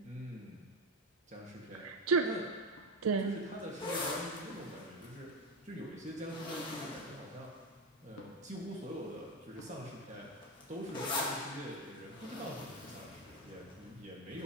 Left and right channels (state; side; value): normal; both; correlation 0.13